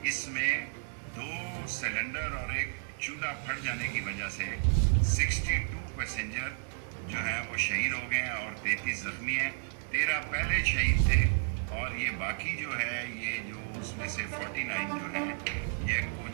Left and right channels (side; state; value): left; silent; digital silence